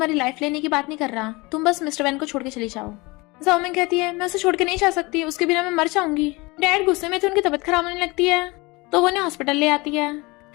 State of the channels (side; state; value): right; quieter; 24.3 dB